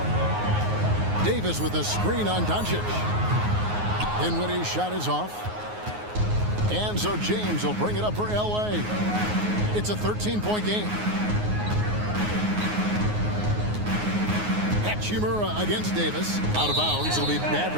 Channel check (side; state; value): left; late; 9.5 ms